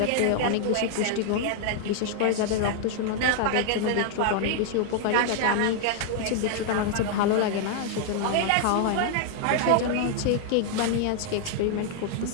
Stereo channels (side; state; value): both; different; correlation 0.00